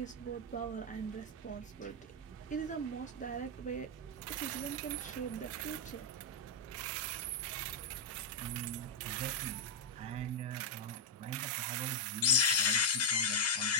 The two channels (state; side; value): normal; both; correlation -0.01